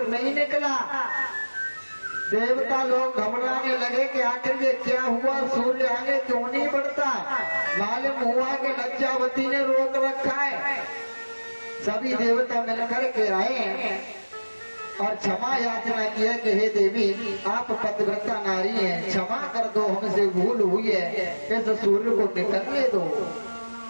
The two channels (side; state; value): both; inverted; correlation -1.00